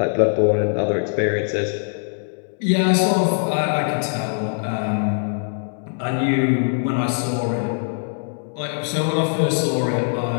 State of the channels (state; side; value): silent; right; 64 dB below the other